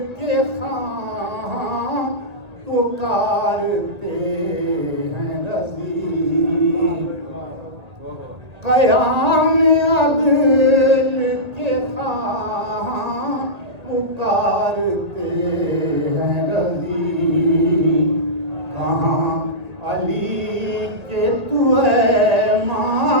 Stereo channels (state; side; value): late; left; 1.9 ms